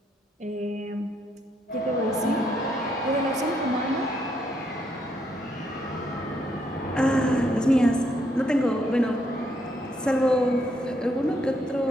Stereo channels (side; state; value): both; normal; correlation 0.74